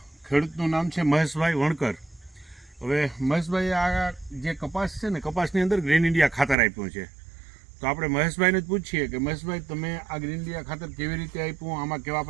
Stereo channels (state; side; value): drops out; left; at 6.6 s